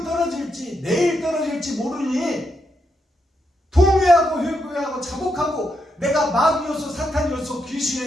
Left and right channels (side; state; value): both; normal; correlation 0.82